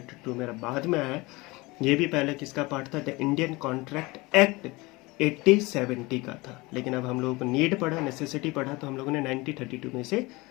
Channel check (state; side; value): quieter; right; 23.1 dB